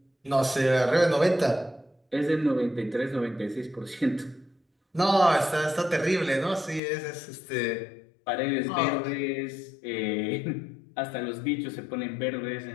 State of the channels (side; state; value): right; drops out; at 6.8 s